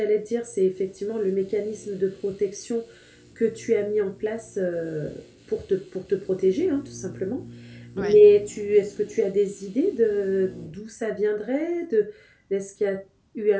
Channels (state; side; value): identical; both; correlation 1.00